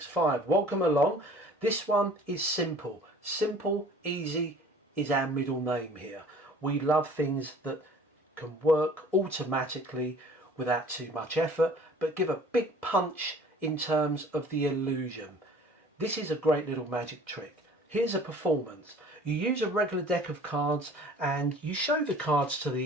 Welcome along. This one is simple. Simple, easy is our middle name here. We love things that can work automatically without too much effort, but give a big punch in terms of the illusion. This is a great little magic trick. Here's a performance. You use a regular deck of cards and you show the cards to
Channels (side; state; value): both; normal; correlation 0.49